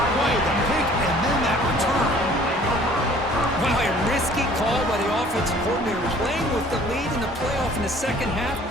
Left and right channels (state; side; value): normal; both; correlation 0.53